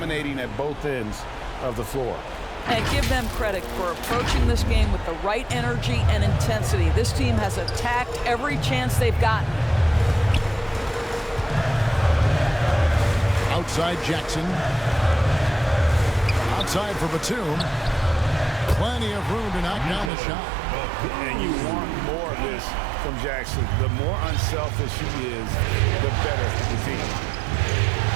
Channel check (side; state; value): left; drops out; at 20.1 s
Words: at both ends of the floor. And give them credit for approaching this game with the right energy and intensity. This team has attacked every chance they've gotten. Outside Jackson. Outside for Batum. Plenty of room to knock down the shot. And you want more of this from Jackson. The more unselfish he is, the better the team.